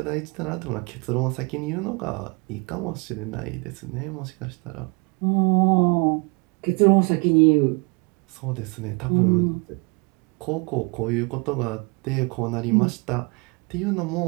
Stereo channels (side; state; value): left; quieter; 31.1 dB